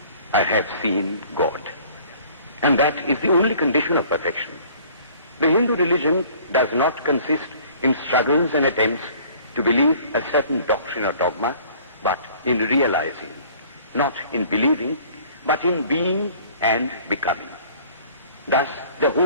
I have seen God. And that is the only condition of perfection. The Hindu religion does not consist in struggles and attempts to believe a certain doctrine or dogma, but in realizing, not in believing, but in being and becoming. Thus, the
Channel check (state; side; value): inverted; both; correlation -0.52